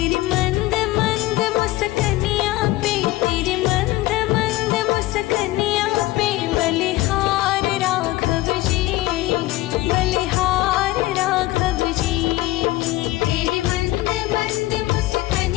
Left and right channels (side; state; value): right; quieter; 17.9 dB